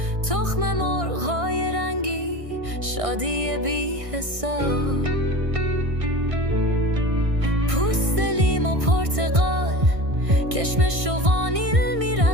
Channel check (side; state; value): left; late; 1.6 ms